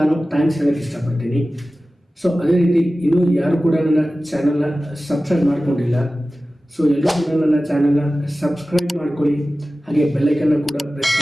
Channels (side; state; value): both; normal; correlation 0.96